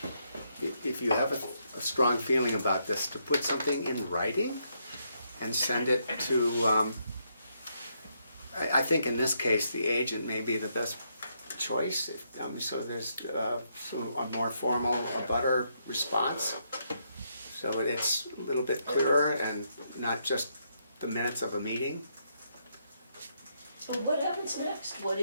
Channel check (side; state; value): both; inverted; correlation -0.77